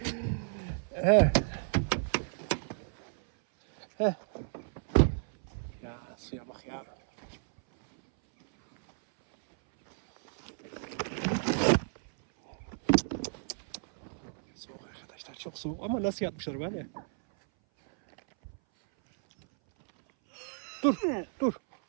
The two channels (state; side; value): silent; left; 56 dB below the other